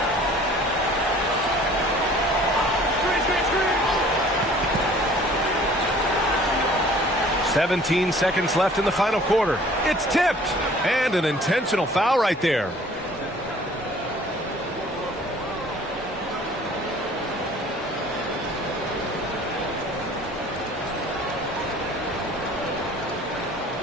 "17 seconds left in the final quarter. It's tipped, and an intentional foul right there.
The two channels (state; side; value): normal; both; correlation 0.51